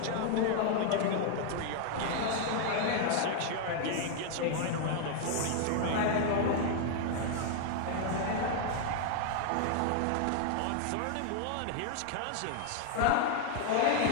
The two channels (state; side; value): different; both; correlation 0.00